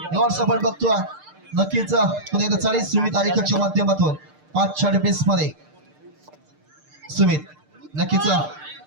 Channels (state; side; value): late; left; 6.6 ms